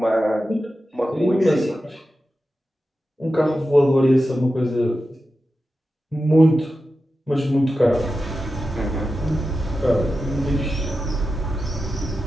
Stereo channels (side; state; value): both; normal; correlation 0.91